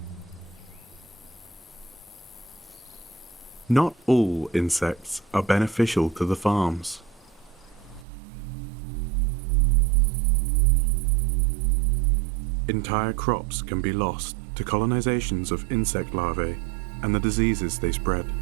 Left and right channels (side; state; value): left; drops out; at 8.1 s